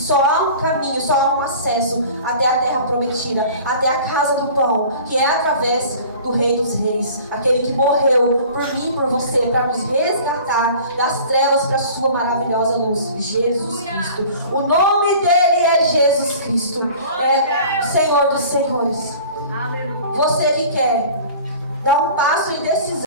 há um caminho, só há um acesso até a terra prometida, até a casa do pão, que é através do Rei dos Reis, aquele que morreu por mim e por você, para nos resgatar das trevas para a sua maravilhosa luz, Jesus Cristo. O nome dele é Jesus Cristo, é o Senhor dos Senhores. Você que quer dar um passo em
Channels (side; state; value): both; inverted; correlation -0.44